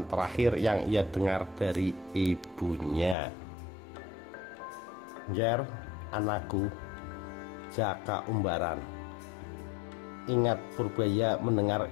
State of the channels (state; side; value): drops out; right; at 3.2 s